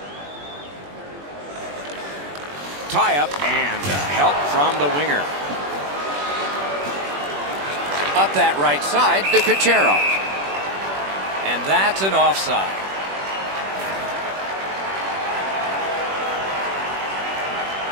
Tie-up and help from the winger. Up that right side to Kucherov. And that's an offside.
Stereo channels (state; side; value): late; left; 21 ms